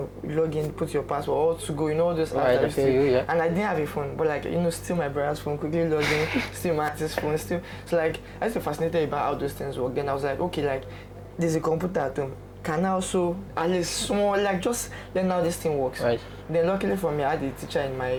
in, put your password, all to go, all those apps that I used to. And I didn't have a phone, but steal my brother's phone, quickly log in, steal my auntie's phone, steal. So I used to be fascinated about how those things work. Then I was like, okay, there's a computer at home. Can I also at least small just learn how this thing works? Right. Then luckily for me, I had a teacher in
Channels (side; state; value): both; identical; correlation 1.00